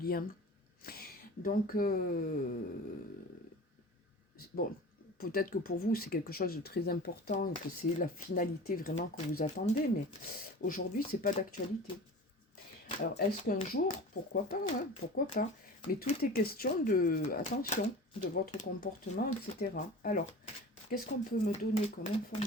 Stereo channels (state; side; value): normal; both; correlation 0.37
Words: Donc, bon, peut-être que pour vous, c'est quelque chose de très important, que c'est la finalité vraiment que vous attendez, mais aujourd'hui, c'est pas d'actualité. Alors, est-ce qu'un jour, pourquoi pas, hein, pourquoi pas, mais tout est question de, attention, de votre comportement, etc. Alors, qu'est-ce qu'on peut me donner comme